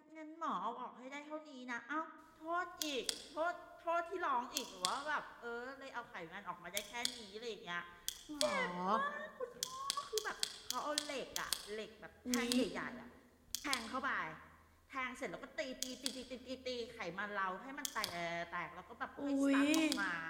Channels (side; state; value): both; identical; correlation 1.00